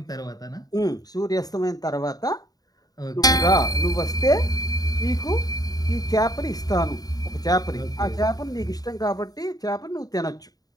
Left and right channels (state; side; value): late; right; 0.18 ms